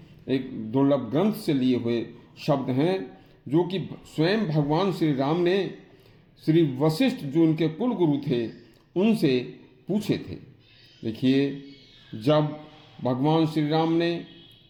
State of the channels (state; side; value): identical; both; correlation 1.00